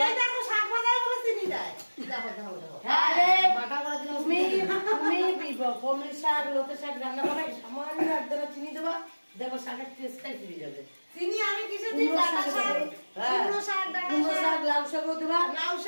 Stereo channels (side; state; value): both; inverted; correlation -1.00